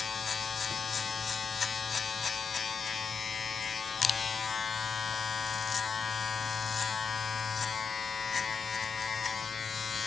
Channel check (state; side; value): quieter; right; 5.6 dB